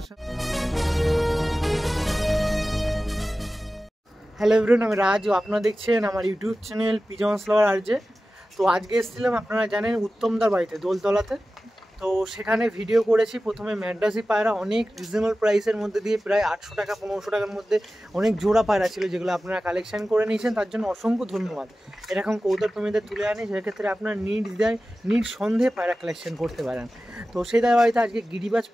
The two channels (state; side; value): normal; both; correlation 0.95